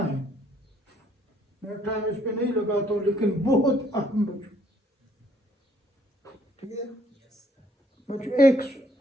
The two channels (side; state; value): both; normal; correlation 0.65